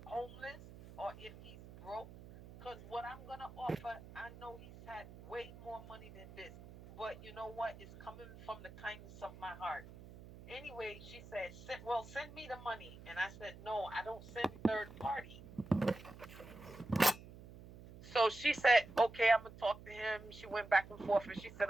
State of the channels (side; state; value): right; noise; hum, 16 dB below the sound